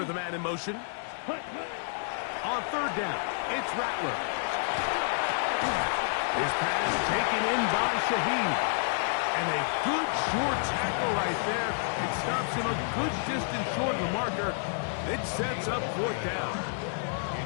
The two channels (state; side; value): silent; right; digital silence